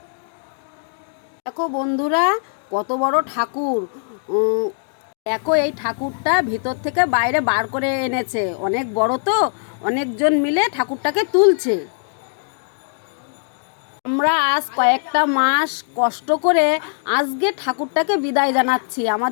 দেখো বন্ধুরা কত বড় ঠাকুর। দেখো এই ঠাকুরটা ভিতর থেকে বাইরে বার করে এনেছে, অনেক বড় তো, অনেকজন মিলে ঠাকুরটাকে তুলছে। আমরা আজ কয়েকটা মাস কষ্ট করে আজকে ঠাকুরটাকে বিদায় জানাচ্ছি।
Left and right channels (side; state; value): right; silent; digital silence